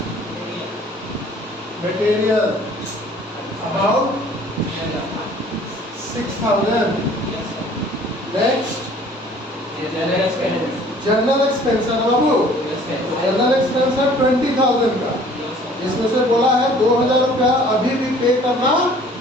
material amount 6,000। Next general expense है ना बाबू, जनरल एक्सपेंस है 20,000 का, इसमें से बोला है 2,000 रुपया अभी भी पे करना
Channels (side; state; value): both; normal; correlation 0.53